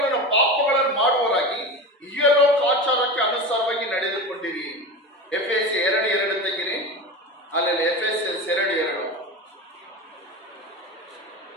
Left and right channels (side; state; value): both; normal; correlation 0.26